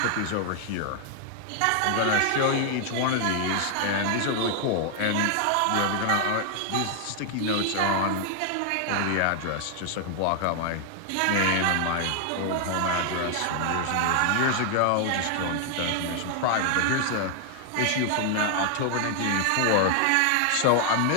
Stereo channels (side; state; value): both; different; correlation 0.00